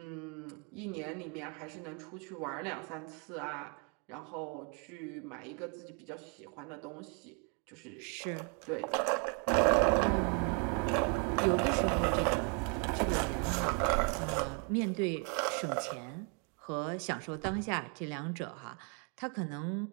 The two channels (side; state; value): left; quieter; 36.7 dB